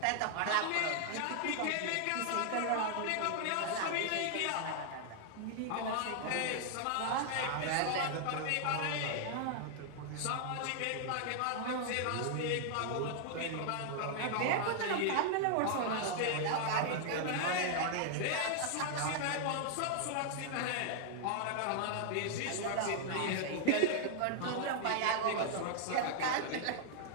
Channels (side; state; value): both; different; correlation 0.00